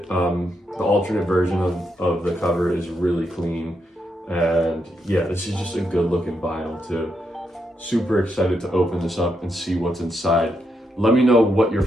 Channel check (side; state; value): both; normal; correlation 0.81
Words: The alternate version of the cover is really clean. And yeah, this is just a good looking vinyl too. Super excited to open this up and see what's inside. Let me know what your